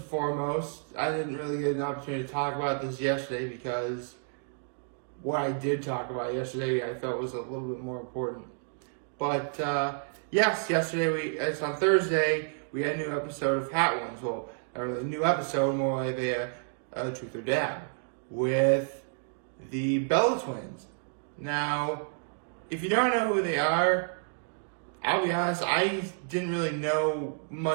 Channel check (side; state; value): left; silent; digital silence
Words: foremost, I didn't really get an opportunity to talk about this yesterday because what I did talk about yesterday I felt was a little bit more important. But yesterday it's on Thursday, we had a new episode of Hot Ones. Well, or a new episode, more like a Truth or Dab, with the Bella twins. Now, if you don't know who they are, I'll be honest, I didn't really know